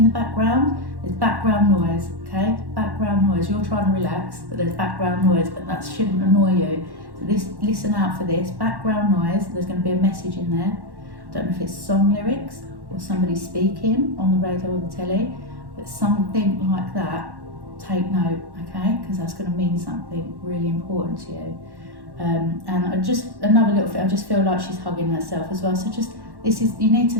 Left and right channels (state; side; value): late; left; 1.1 ms